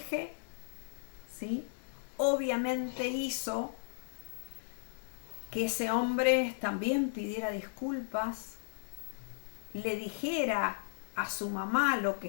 ¿sí? Obviamente hizo que ese hombre también pidiera disculpas, le dijera a su mamá lo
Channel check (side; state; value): right; silent; digital silence